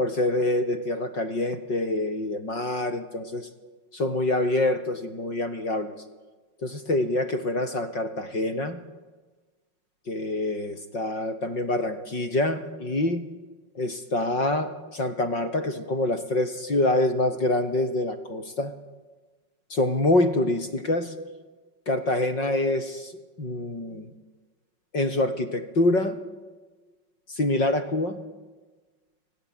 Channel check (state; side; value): late; right; 5.5 ms